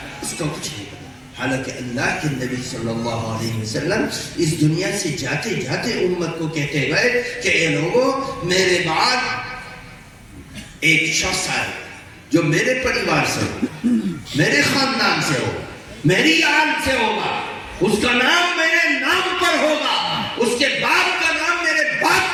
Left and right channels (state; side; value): identical; both; correlation 1.00